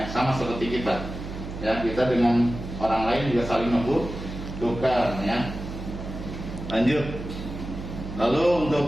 sama seperti kita. Ya, kita dengan orang lain juga saling membutuhkan ya. Lanjut. Lalu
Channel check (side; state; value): right; noise; hum, 9 dB below the sound